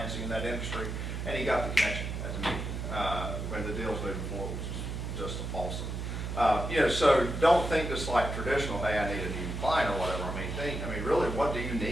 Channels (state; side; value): noise; right; hum, 4 dB below the sound